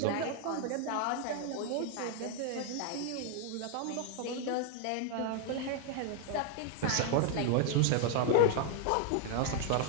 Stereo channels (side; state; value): both; different; correlation 0.00